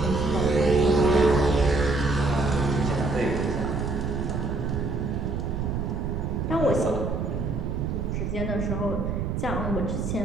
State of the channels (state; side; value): noise; right; rumble, 2 dB below the sound